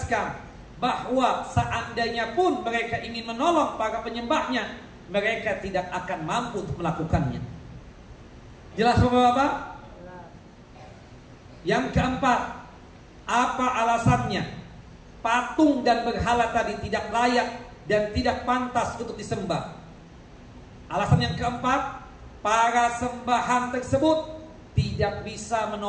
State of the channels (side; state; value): both; identical; correlation 1.00